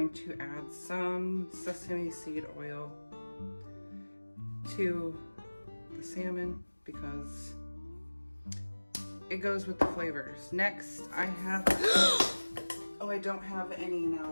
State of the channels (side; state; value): both; inverted; correlation -1.00